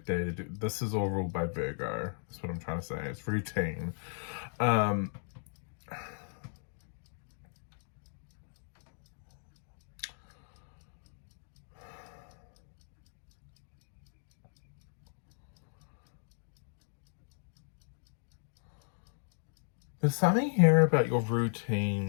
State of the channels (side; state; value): right; silent; digital silence